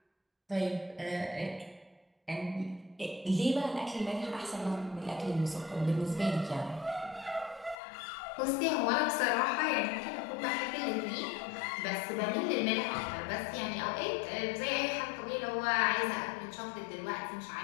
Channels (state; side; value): drops out; right; at 7.8 s